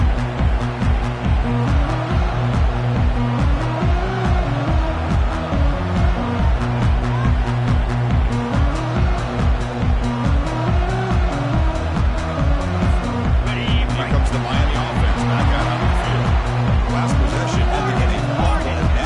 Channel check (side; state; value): both; identical; correlation 1.00